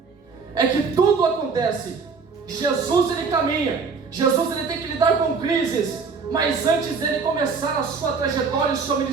É que tudo acontece. Jesus ele caminha, Jesus ele tem que lidar com crises, mas antes dele começar a sua trajetória e o seu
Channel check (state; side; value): quieter; left; 5.1 dB